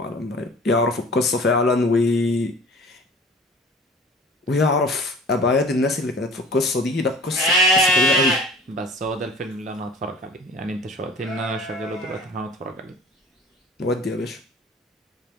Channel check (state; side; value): normal; both; correlation 0.44